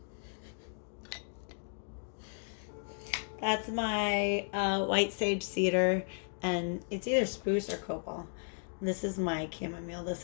That's my white sage cedar, and it's either spruce or copal. This is my chamomile.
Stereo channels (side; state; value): right; silent; 55 dB below the other